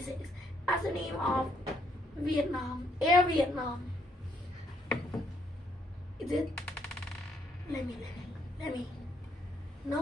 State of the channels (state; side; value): normal; both; correlation 0.71